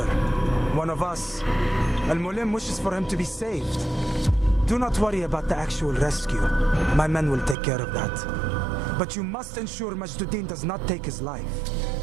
One of us. Al-Muallim wishes for him to be saved. Do not worry about the actual rescue. My men will take care of that. But you must ensure Majduddin does not take his life.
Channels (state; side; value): drops out; left; at 7.6 s